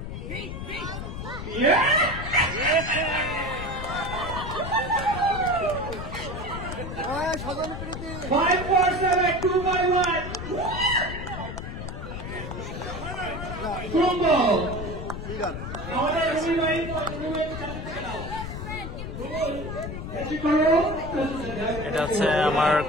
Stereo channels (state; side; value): noise; left; rumble, 7 dB below the sound